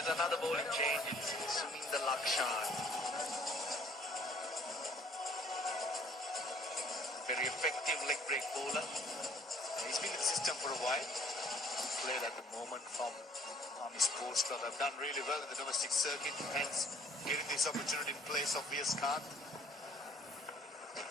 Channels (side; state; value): both; normal; correlation 0.57